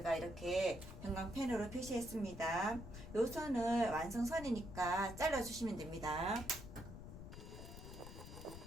이렇게 형광펜으로 표시했습니다. 요 선을 완성선이니까 잘라주시면 됩니다.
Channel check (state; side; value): noise; left; rumble, 11 dB below the sound